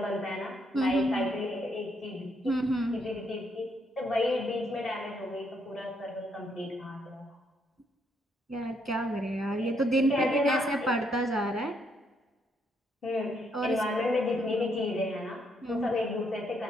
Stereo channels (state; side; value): normal; both; correlation 0.74